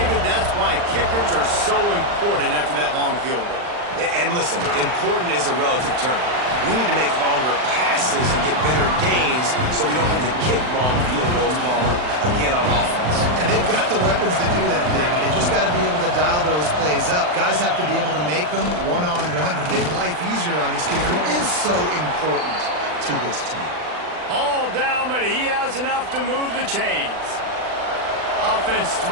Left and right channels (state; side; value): late; left; 39 ms